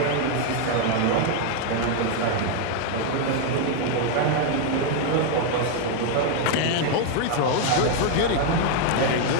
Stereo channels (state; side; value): different; both; correlation 0.00